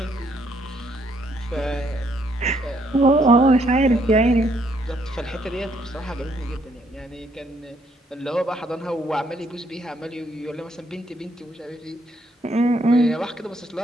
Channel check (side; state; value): both; normal; correlation 0.70